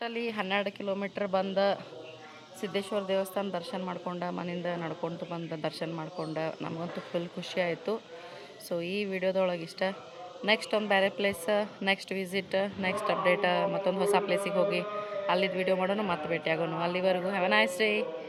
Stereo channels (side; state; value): both; identical; correlation 1.00